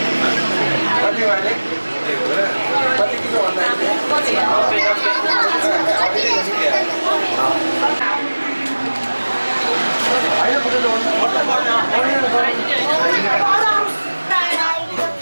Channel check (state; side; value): inverted; both; correlation -1.00